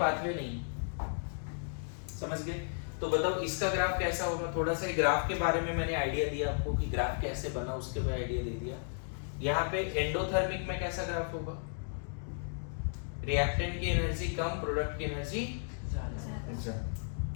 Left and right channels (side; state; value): right; silent; digital silence